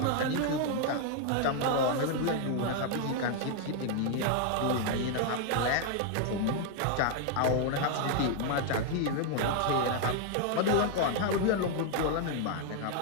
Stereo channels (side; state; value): both; different; correlation 0.00